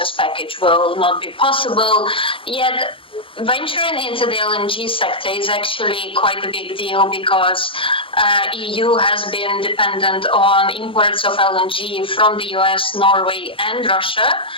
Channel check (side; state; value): right; late; 0.25 ms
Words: package will not be possible. Yet venturing into the LNG sector is actually quite a big deal because EU has been dependent on imports of LNG from the US, Norway and Russia.